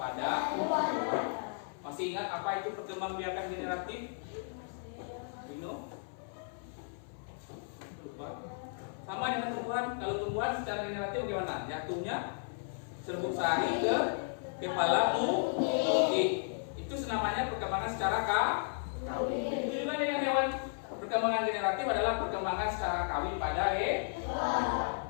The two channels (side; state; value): right; silent; 55 dB below the other